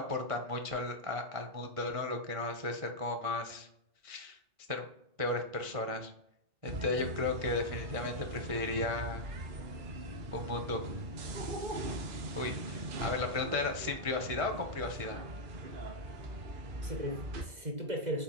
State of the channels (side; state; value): left; late; 1.6 ms